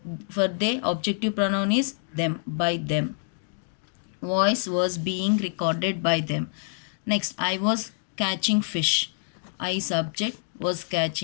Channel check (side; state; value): right; silent; digital silence